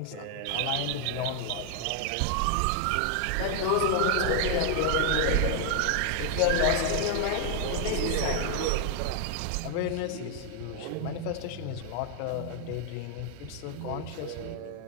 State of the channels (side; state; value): both; different; correlation 0.00